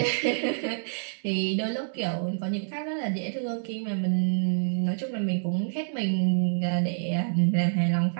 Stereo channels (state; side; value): silent; left; 60 dB below the other